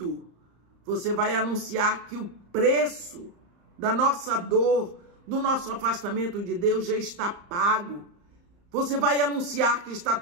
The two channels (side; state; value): left; late; 34 ms